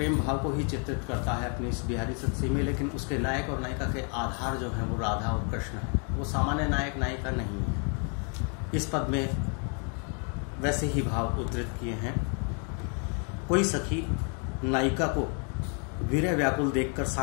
भाव को ही चित्रित करता है अपनी इस बिहारी सत्सी में, लेकिन उसके नायक और नायिका के आधार जो है वो राधा और कृष्ण है, वो सामान्य नायक नायिका नहीं है। इस पद में वैसे ही भाव उद्धृत किए हैं। कोई सखी नायिका को वीर्य व्याकुल देखकर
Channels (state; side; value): quieter; right; 39.6 dB